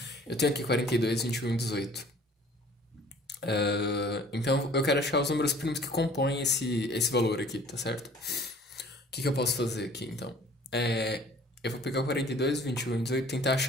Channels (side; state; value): both; normal; correlation 0.51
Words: Eu tenho aqui 42, 21 e 18. Então eu quero achar os números primos que compõem esse valor aqui, tá certo? O que eu posso fazer aqui então? Eu vou pegar o 42, 21 e 18 e tentar